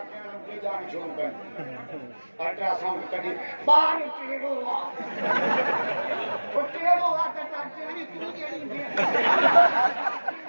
अल्ट्रासाउंड कॾहिं ॿार टेढ़ो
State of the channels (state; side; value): inverted; both; correlation -1.00